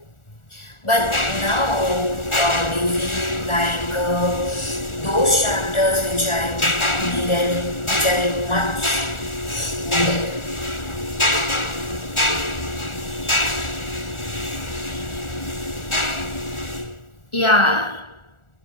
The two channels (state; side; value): late; right; 1.4 ms